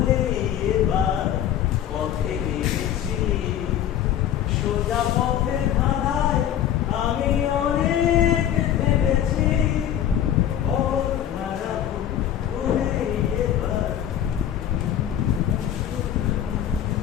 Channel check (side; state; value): right; quieter; 10.6 dB